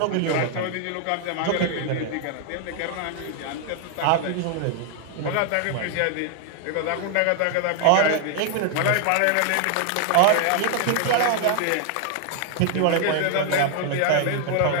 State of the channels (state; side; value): different; both; correlation 0.00